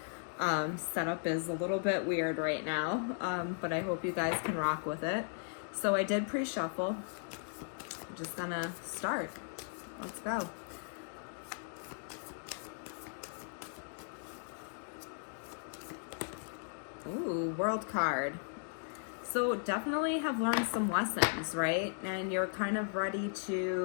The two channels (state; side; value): silent; right; digital silence